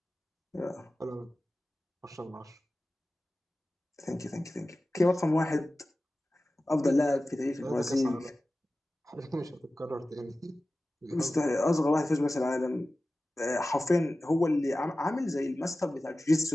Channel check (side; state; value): both; normal; correlation 0.96